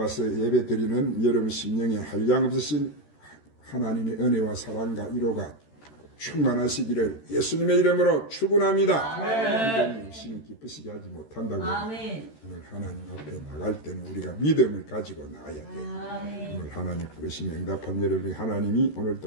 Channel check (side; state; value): right; late; 13 ms